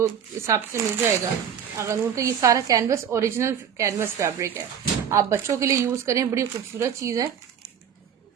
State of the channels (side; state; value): left; quieter; 8.2 dB